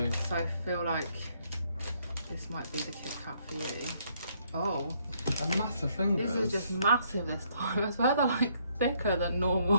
So I feel like this might be the KitKat for you. Oh. And massive fingers. These are just massive this time. I swear they're like thicker than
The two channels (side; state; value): both; inverted; correlation -0.70